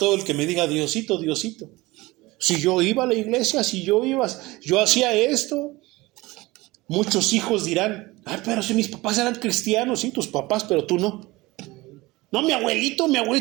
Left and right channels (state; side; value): quieter; left; 20.8 dB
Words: el que me diga Diosito, Diosito. Si yo iba a la iglesia, yo hacía esto. Muchos hijos dirán, pero si mis papás eran cristianos, sí, tus papás, pero tú no. No, mi abuelito